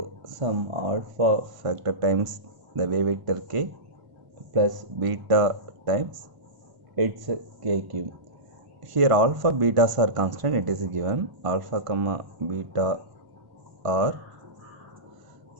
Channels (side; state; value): left; late; 1.5 ms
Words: some alpha factor times the wave vector k plus beta times its k cube. Here alpha betas are constant, it is given alpha comma beta are